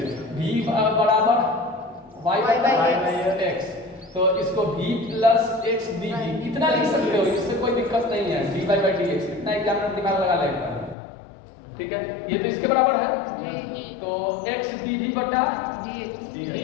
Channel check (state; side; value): drops out; right; at 11.0 s